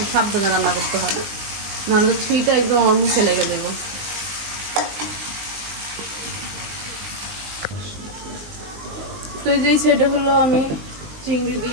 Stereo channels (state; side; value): late; left; 19 ms